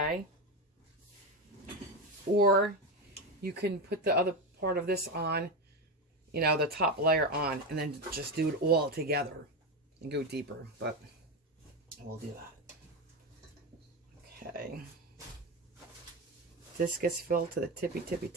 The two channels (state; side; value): normal; both; correlation 0.14